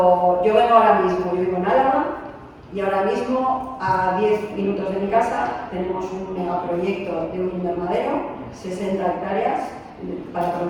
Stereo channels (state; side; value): identical; both; correlation 1.00